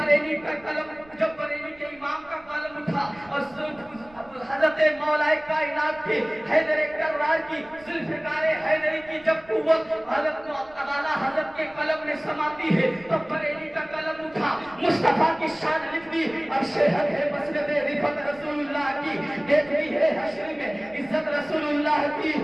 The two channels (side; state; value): right; noise; rumble, 26 dB below the sound